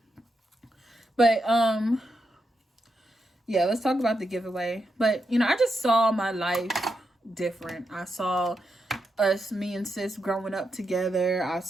But yeah, let's talk about the giveaway. But you know, I just saw my life different. I saw me and sis growing up together. I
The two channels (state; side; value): normal; both; correlation 0.85